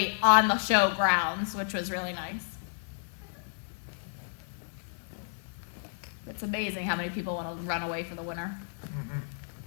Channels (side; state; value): right; silent; digital silence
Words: on the show grounds, which was really nice. It's amazing how many people want to run away for the winter.